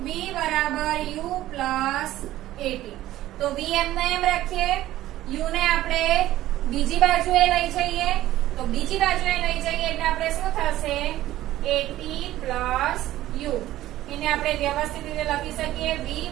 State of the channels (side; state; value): left; quieter; 14.7 dB